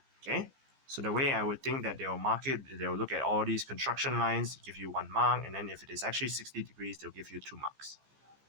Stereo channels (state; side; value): late; left; 15 ms